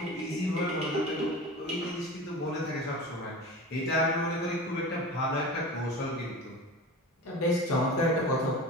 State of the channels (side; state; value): both; normal; correlation 0.33